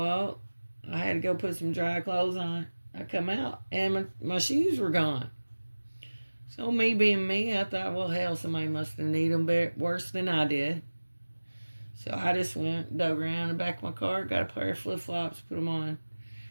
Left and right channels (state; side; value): inverted; both; correlation -1.00